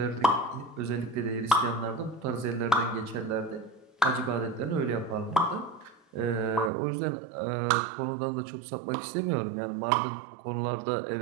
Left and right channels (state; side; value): drops out; left; at 6.7 s